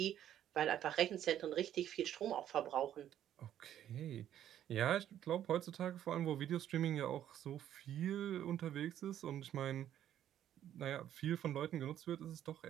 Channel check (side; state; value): left; quieter; 11.0 dB